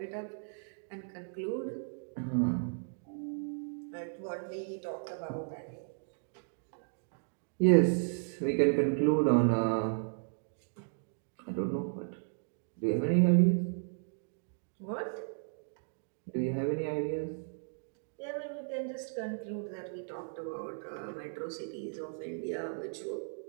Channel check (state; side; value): silent; left; digital silence